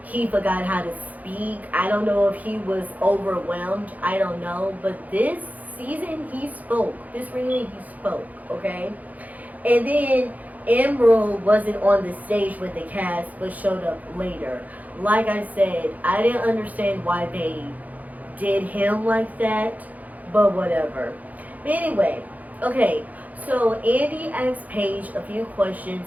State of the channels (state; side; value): late; left; 0.078 ms